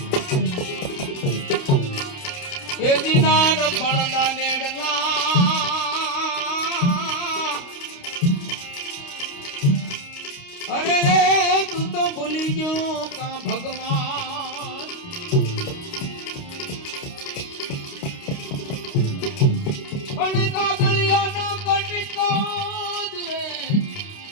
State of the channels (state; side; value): late; right; 29 ms